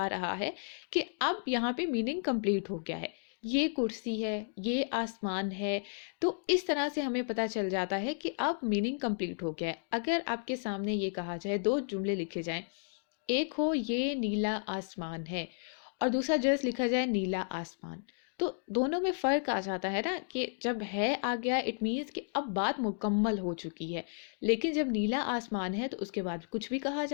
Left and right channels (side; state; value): right; silent; digital silence